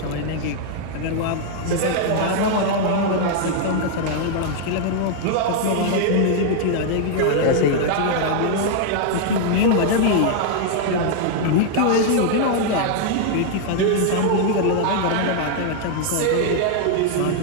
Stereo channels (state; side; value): different; both; correlation 0.00